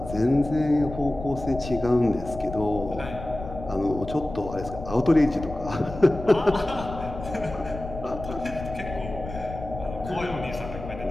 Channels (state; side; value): noise; left; rumble, 11 dB below the sound